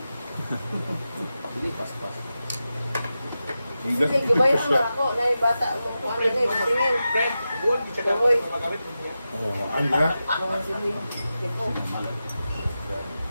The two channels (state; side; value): inverted; both; correlation -0.92